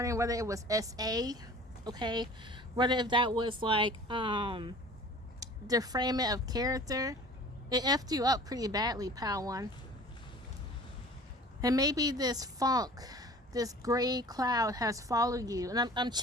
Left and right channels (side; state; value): both; normal; correlation 0.45